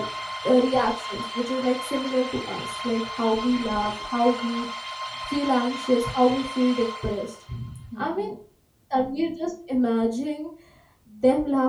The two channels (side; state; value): both; identical; correlation 1.00